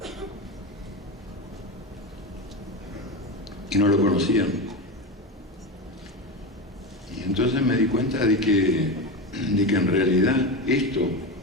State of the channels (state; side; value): normal; both; correlation 0.20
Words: Y no lo conocían. Y entonces me di cuenta de que en realidad